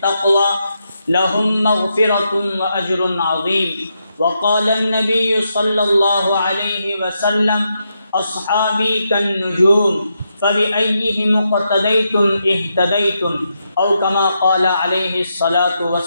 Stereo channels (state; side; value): inverted; both; correlation -0.83